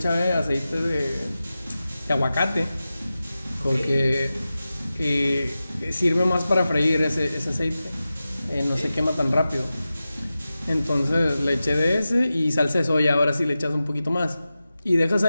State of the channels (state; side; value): inverted; both; correlation -0.94